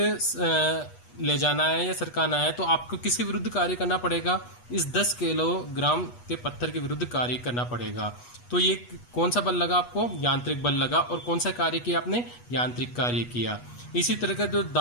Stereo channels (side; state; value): right; late; 8.3 ms